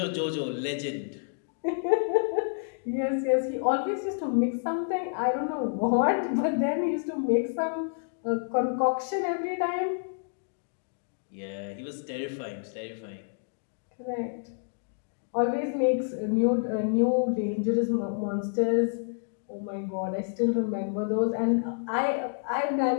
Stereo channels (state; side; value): silent; right; digital silence